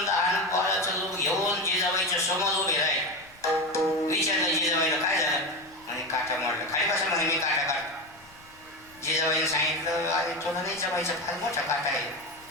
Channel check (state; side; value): noise; left; rumble, 27 dB below the sound